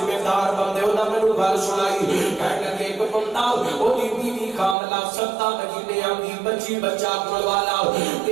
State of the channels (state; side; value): drops out; left; at 4.8 s